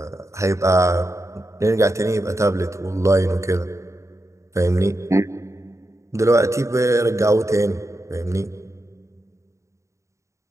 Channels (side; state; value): left; late; 0.14 ms